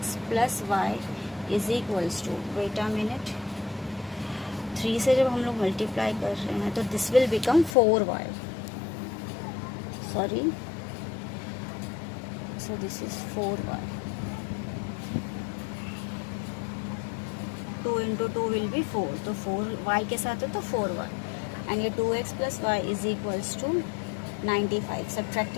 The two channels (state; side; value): drops out; right; at 7.8 s